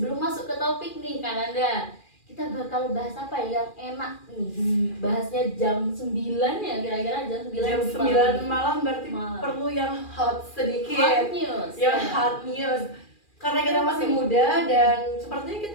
masuk ke topik nih Kananda, kita bakal bahas apa yang enak nih. Bahasnya jam 9 ya, kira-kira jam 9 Jam 9 malam berarti perlu yang hot sedikit. Hot news. Yang hot news. Karena kita masih muda dan sepertinya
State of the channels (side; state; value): right; late; 2.4 ms